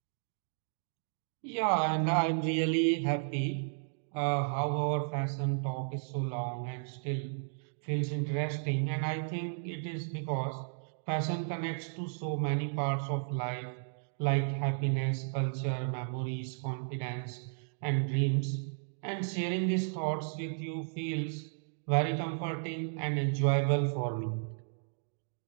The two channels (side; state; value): left; silent; digital silence